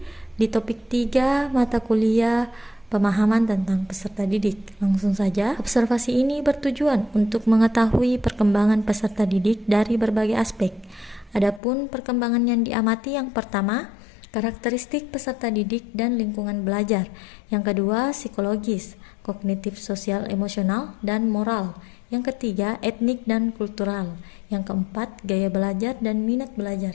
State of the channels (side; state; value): right; drops out; at 11.6 s